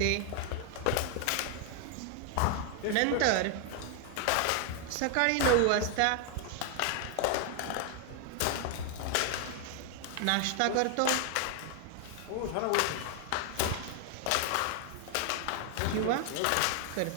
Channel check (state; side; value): different; both; correlation 0.00